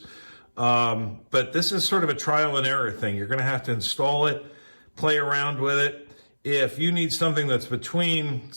But this is sort of a trial and error thing. You're going to have to install it, play around with it. If you need something that's between,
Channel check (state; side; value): inverted; both; correlation -1.00